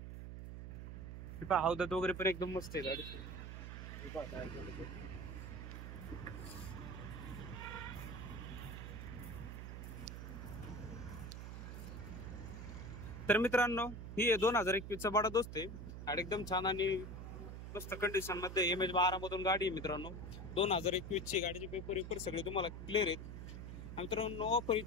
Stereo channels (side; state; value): right; noise; hum, 8 dB below the sound